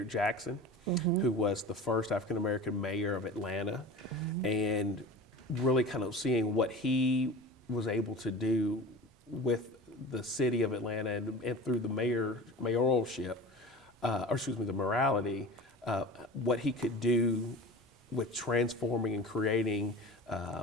Jackson, who was the first African-American mayor of Atlanta, and really kind of seeing what he was able to do with the city of Atlanta and through the mayoralship, the morality, what he could do with transforming and creating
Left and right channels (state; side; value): normal; both; correlation 0.35